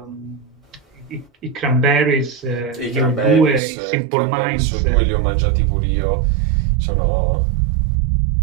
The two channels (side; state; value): left; drops out; at 3.6 s